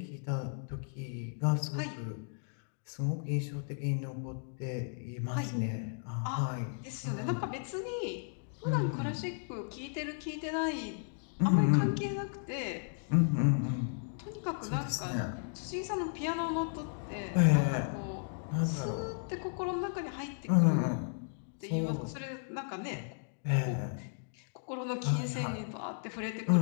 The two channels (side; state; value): right; silent; digital silence